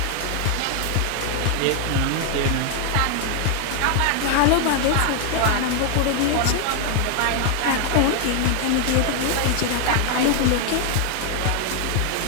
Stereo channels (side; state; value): both; different; correlation 0.00